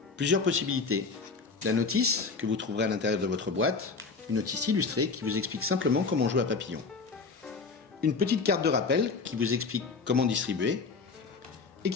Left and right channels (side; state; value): right; quieter; 4.5 dB